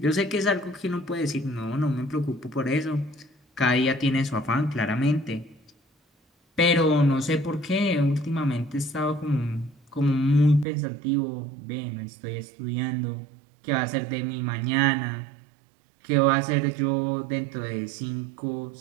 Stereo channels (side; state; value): left; drops out; at 10.7 s